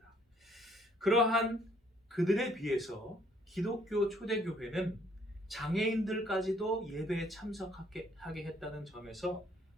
그러한 그들에 비해서 기독교 초대교회는 장애인들까지도 예배에 참석하게 했다는 점에서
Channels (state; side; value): normal; both; correlation 0.64